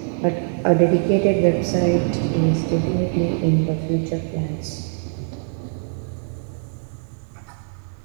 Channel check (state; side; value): silent; left; digital silence